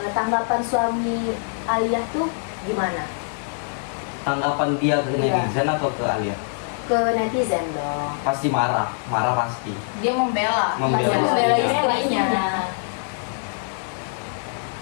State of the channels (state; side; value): silent; right; digital silence